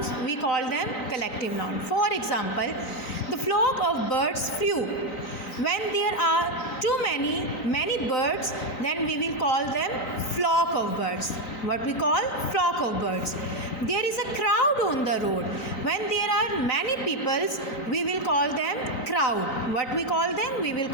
we call them collective noun. For example, the flock of birds flew. When there are too many birds, then we will call them flock of birds. What we call flock of birds. There is a crowd on the road. When there are many peoples, we will call them crowd. What we call them? We will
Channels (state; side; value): late; right; 3.9 ms